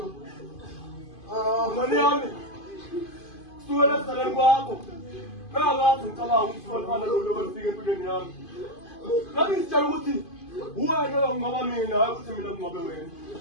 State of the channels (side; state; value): right; late; 2.5 ms